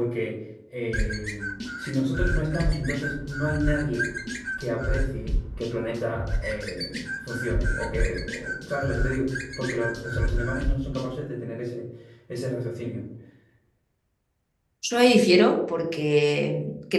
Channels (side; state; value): both; identical; correlation 1.00